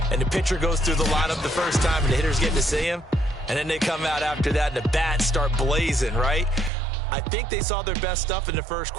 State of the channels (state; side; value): drops out; left; at 6.7 s